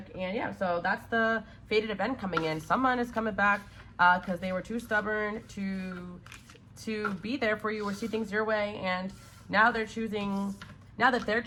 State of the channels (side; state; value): both; identical; correlation 1.00